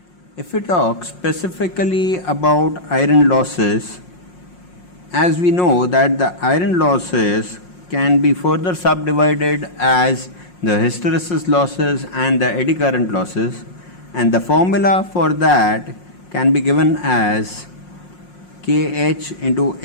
If we talk specifically about iron losses, as we know that the iron losses can be further subdivided as the hysteresis losses and the eddy current losses, and the formula for that can be given as Kh into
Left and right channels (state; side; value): late; right; 5.6 ms